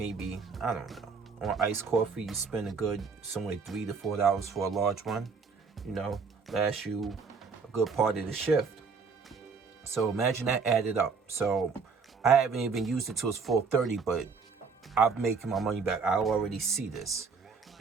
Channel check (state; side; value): quieter; left; 5.1 dB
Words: I don't know, on iced coffee, you spend a good somewhere $3 to $4 for a large one. You know, lasts you a good part of the shift. So imagine that added up. So I haven't even used it till it's 4:30, but I'm making my money back. I already see this